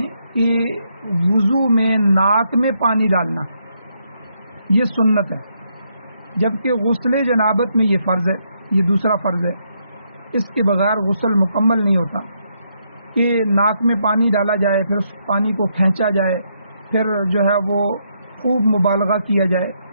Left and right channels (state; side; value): inverted; both; correlation -0.77